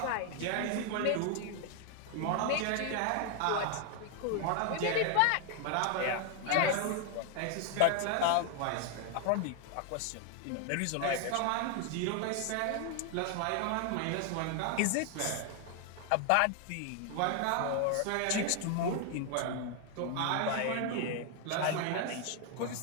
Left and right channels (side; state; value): both; different; correlation 0.00